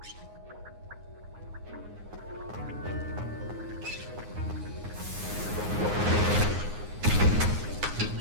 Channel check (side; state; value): left; late; 9.6 ms